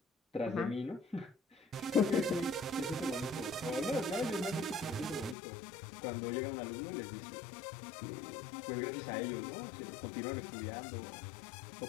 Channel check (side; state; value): right; drops out; at 5.4 s